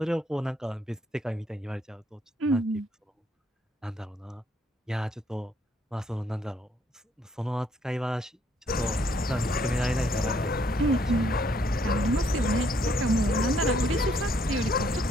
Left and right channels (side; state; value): both; normal; correlation 0.68